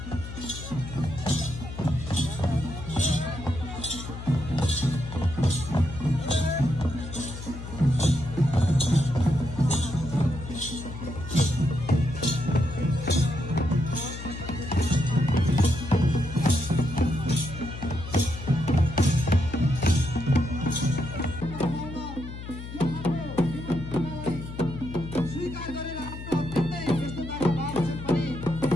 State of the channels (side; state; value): left; noise; hum, 10 dB below the sound